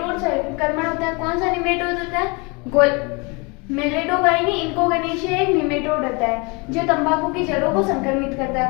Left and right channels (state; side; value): quieter; right; 29.5 dB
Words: संक्रमण होता है। कौन सा निमेटोड होता है? मेलेडोगाइनी इनकोगेनेशिया एक निमेटोड होता है जो तंबाकू की जड़ों को संक्रमित करता